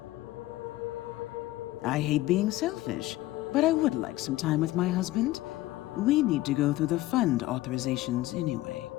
I hate being selfish, but I would like some time with my husband. We need to go through the fund authorizations anyway.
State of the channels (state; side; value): quieter; right; 16.9 dB